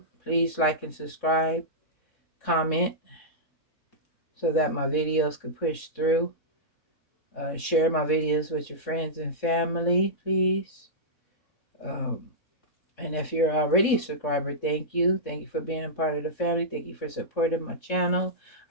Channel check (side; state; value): right; late; 3.6 ms